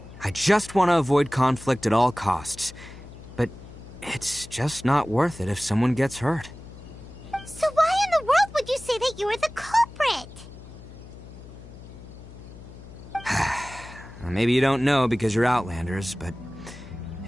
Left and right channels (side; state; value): left; noise; hum, 16 dB below the sound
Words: I just want to avoid conflict at all costs. But it's just not worth it if someone gets hurt. So why in the world would you say that you were the culprit? Maybe you don't know because you're Outlanders, but